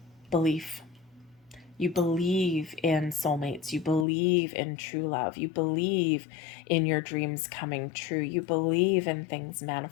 Belief. You believe in soulmates. You believe in true love. You believe in your dreams coming true. You believe in things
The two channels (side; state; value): right; drops out; at 4.0 s